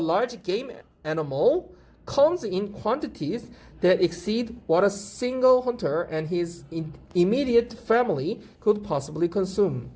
game animal comes in quantities that exceed what a single hunter and his immediate family could possibly consume.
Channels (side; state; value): both; identical; correlation 1.00